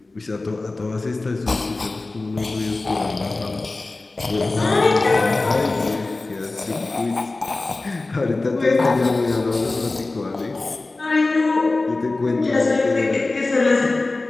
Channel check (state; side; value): quieter; right; 3.3 dB